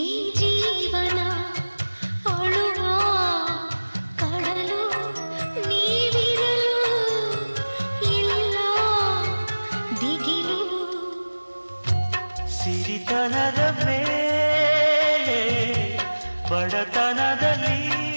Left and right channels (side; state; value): both; inverted; correlation -1.00